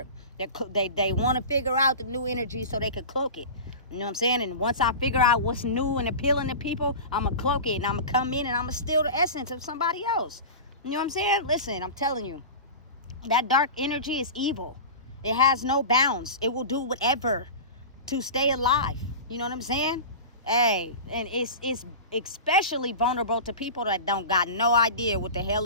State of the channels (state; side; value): inverted; both; correlation -0.31